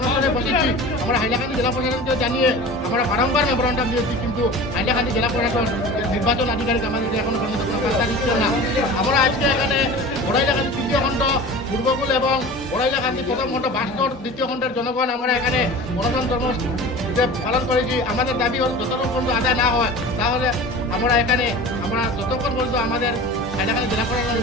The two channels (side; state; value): both; normal; correlation 0.36